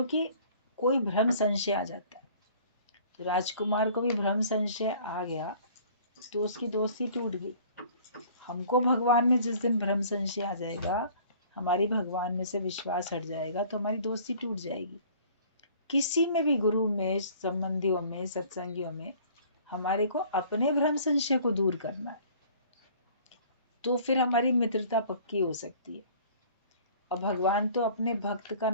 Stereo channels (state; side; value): inverted; both; correlation -0.52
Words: कोई भ्रम संशय आ जाता है। तो राजकुमार को भी भ्रम संशय आ गया तो उसकी दोस्ती टूट गई। हमको भगवान में जिस दिन भ्रम संशय आ जाएगा, हमारी भगवान में से विश्वास हट जाएगा, तो हमारी दोस्ती टूट जाएगी। किसी में भी, गुरु में, संबंधियों में, सत्संगियों में, हमारे को अपने भ्रम संशय को दूर करना है, तो फिर हमारी मित्रता पक्की हो सकती है। और भगवान तो अपने भक्त का